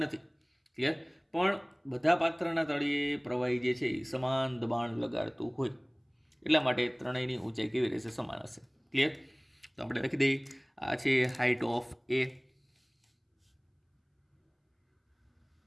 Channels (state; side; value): identical; both; correlation 1.00